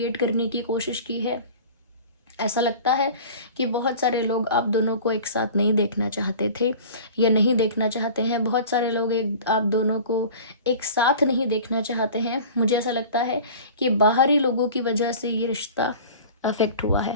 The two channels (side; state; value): both; inverted; correlation -0.40